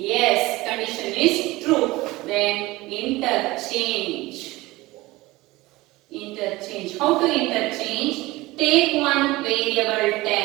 Condition is true. Then interchange. Interchange. How to interchange? Take one variable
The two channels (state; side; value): quieter; left; 20.0 dB